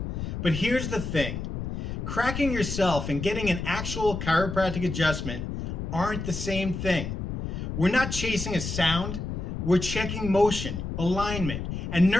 But here's the thing, cracking yourself and getting an actual chiropractic adjustment aren't the same thing. We're not chasing a sound, we're checking motion, alignment, and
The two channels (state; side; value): noise; left; rumble, 5 dB below the sound